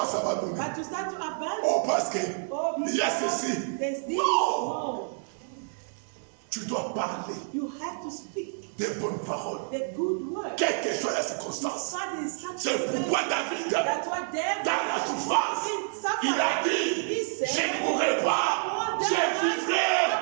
à abandonner. But you start to abandon. Oh, parce que Oh, il y a because ceci. there's this. Non. No. Tu dois parler You have to speak des bonnes paroles. the good word. Quelle que soit la circonstance. God is such C'est pourquoi David, That's what David dans la souffrance, il a dit, je ne mourrai pas, je vivrai,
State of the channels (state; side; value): silent; left; 59 dB below the other